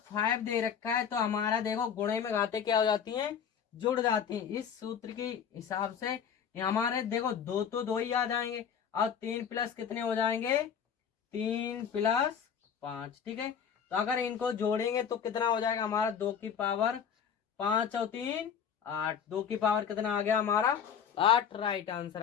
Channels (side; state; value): right; quieter; 7.7 dB